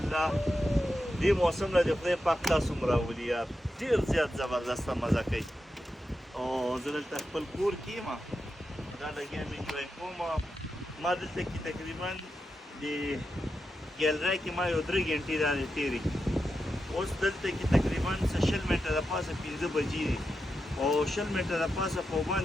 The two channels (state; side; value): normal; both; correlation 0.88